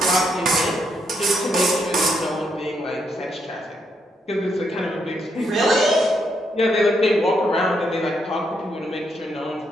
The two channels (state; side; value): normal; both; correlation 0.77